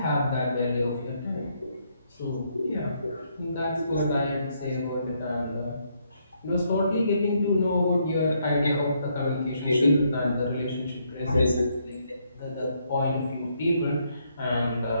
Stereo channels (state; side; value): inverted; both; correlation -0.74